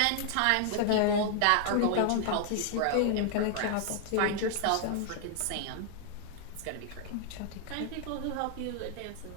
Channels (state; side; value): different; both; correlation 0.00